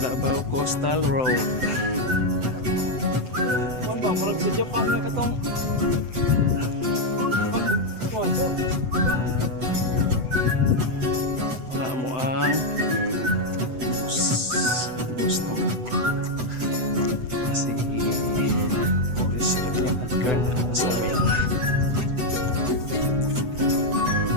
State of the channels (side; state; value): left; late; 7.9 ms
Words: Coastal Road. Kuan ba murag sa Japan nga katong Wala mo ang bus na kasi police yung adkar na sa amin.